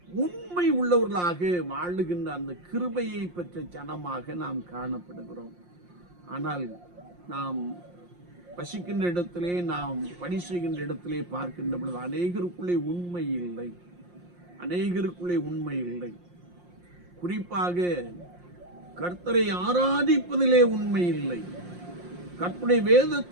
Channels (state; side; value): late; left; 5.7 ms